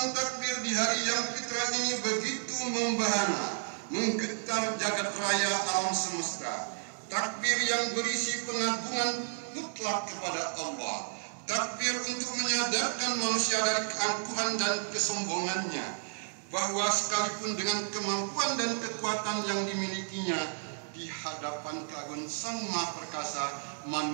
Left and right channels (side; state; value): left; silent; digital silence